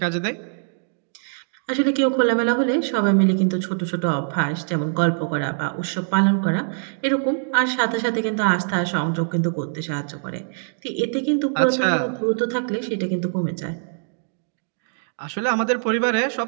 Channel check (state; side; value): silent; left; digital silence